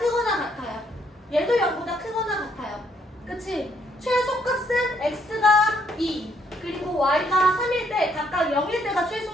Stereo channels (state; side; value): normal; both; correlation 0.70